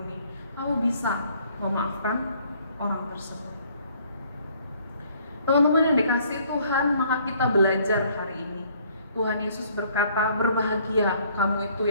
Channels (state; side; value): inverted; both; correlation -0.61